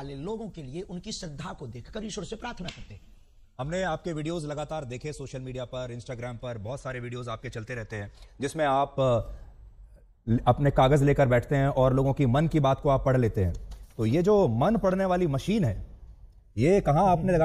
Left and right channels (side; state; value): both; identical; correlation 1.00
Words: लोगों के लिए उनकी श्रद्धा को देखकर ईश्वर से प्रार्थना करते। हमने आपके वीडियोस लगातार देखे, सोशल मीडिया पर, इंस्टाग्राम पर बहुत सारे वीडियोस आपके चलते रहते हैं, जिसमें आप अपने कागज लेकर बैठते हैं और लोगों की मन की बात को आप पढ़ लेते हैं। तो ये जो मन पढ़ने वाली मशीन है, ये कहां आपने